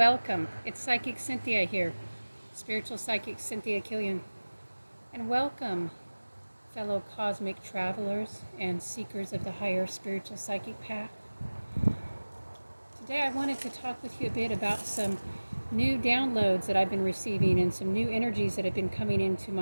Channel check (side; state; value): both; inverted; correlation -1.00